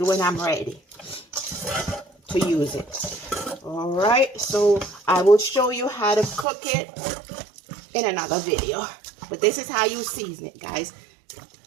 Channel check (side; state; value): left; drops out; at 6.5 s